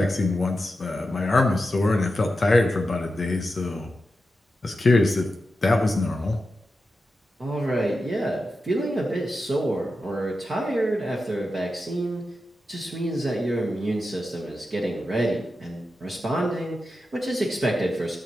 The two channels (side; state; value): both; normal; correlation 0.90